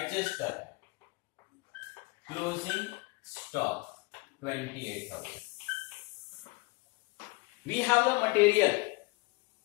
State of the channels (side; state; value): right; quieter; 25.0 dB